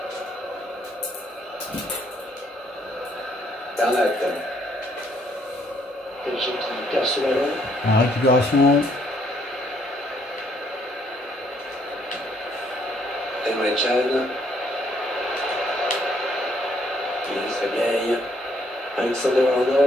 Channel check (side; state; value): both; normal; correlation 0.68